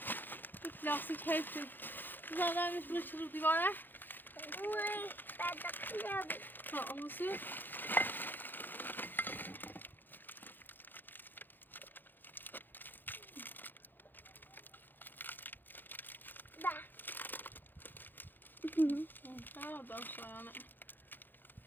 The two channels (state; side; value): late; right; 0.091 ms